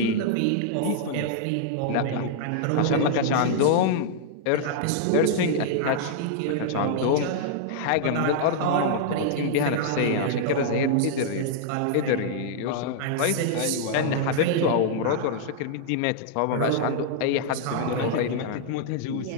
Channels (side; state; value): both; different; correlation -0.01